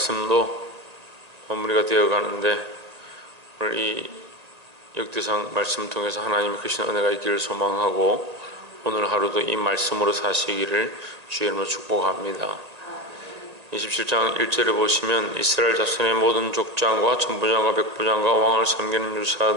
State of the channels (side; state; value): left; late; 1.8 ms